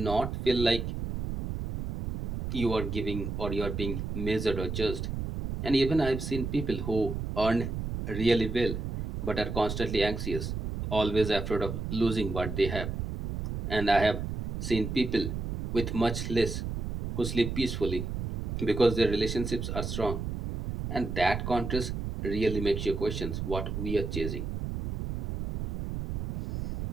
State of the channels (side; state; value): right; noise; rumble, 4 dB below the sound